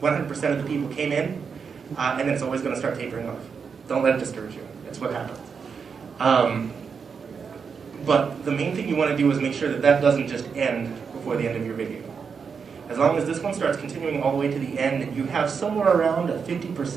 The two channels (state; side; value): quieter; left; 6.0 dB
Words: of the people came in. And then it's always going to start tapering off. Don't let it discourage you. That's what happens. But the main thing you want to do is make sure that that doesn't just end before the end of your video. As long as this one starts continuing all the way to the end and you have somewhere around at